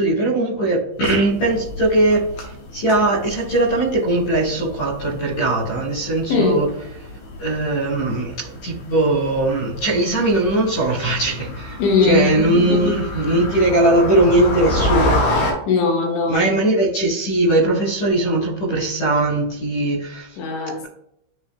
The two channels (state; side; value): late; right; 15 ms